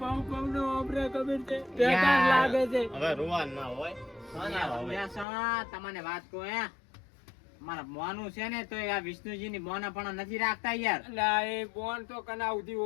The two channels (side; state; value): right; drops out; at 5.2 s